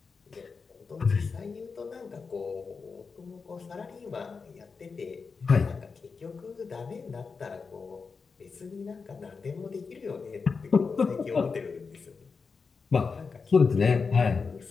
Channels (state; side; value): quieter; right; 5.0 dB